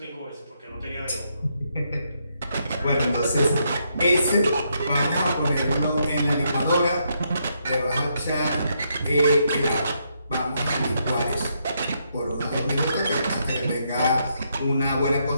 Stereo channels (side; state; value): both; inverted; correlation -0.77